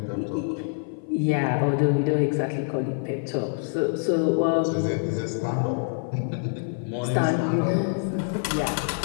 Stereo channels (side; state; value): right; silent; 55 dB below the other